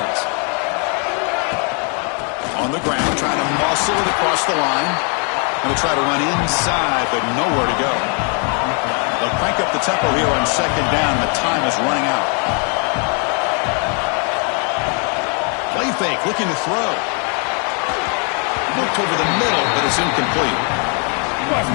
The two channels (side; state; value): right; quieter; 38.7 dB